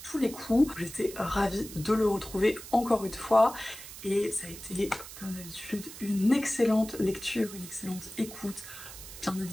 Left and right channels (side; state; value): right; noise; hiss, 13 dB below the sound